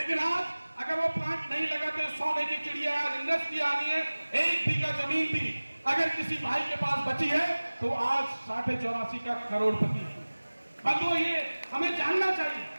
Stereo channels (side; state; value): both; inverted; correlation -1.00